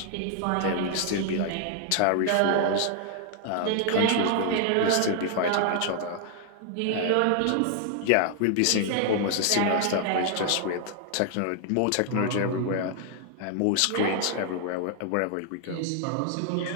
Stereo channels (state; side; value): different; both; correlation 0.00